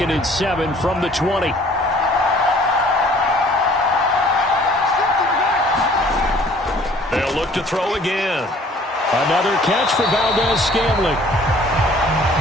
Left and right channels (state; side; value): normal; both; correlation 0.55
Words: and 7 from the 20. They'll look to throw again. Another catch for Valdez-Scantling.